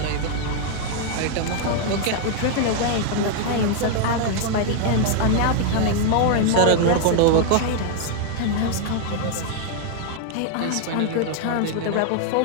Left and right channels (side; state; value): both; different; correlation 0.00